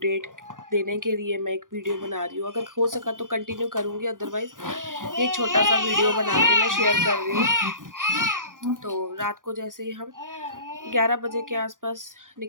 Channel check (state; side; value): late; left; 0.89 ms